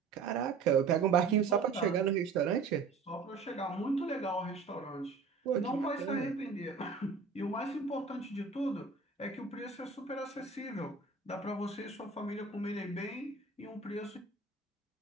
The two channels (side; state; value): left; quieter; 4.9 dB